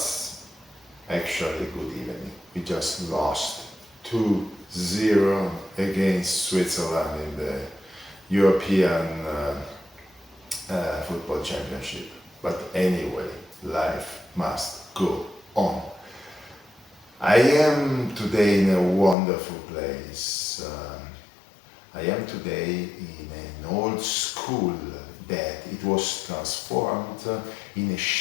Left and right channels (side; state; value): right; drops out; at 19.2 s